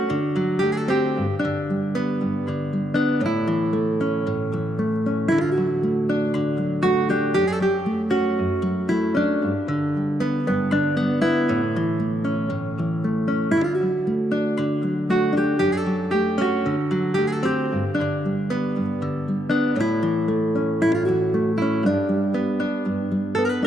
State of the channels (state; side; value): normal; both; correlation 0.80